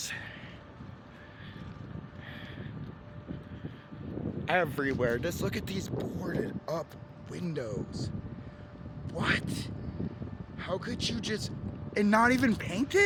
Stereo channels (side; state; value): both; identical; correlation 1.00